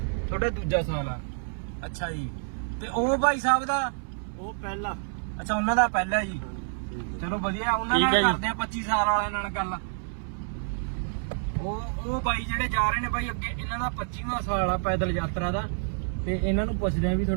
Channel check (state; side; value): silent; left; 59 dB below the other